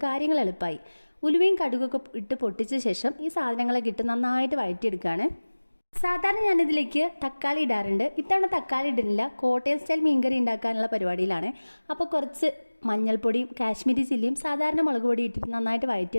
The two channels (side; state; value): both; inverted; correlation -1.00